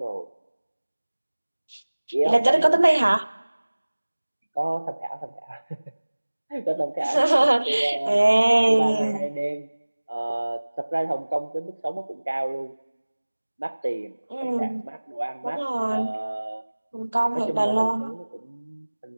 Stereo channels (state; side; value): inverted; both; correlation -1.00